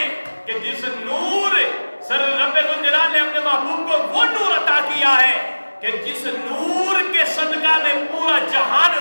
کہ جس نور سر رب ذوالجلال نے اپنے محبوب کو وہ نور عطا کیا ہے کہ جس نور کے صدقہ میں پورا جہان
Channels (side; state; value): both; inverted; correlation -1.00